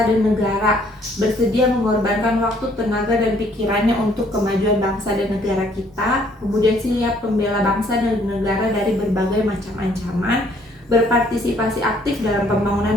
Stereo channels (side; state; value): both; normal; correlation 0.63